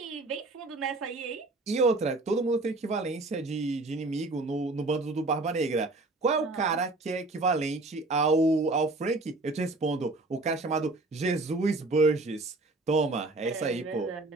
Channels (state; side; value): quieter; left; 3.0 dB